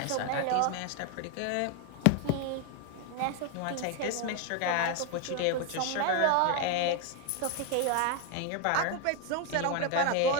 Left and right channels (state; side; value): different; both; correlation 0.01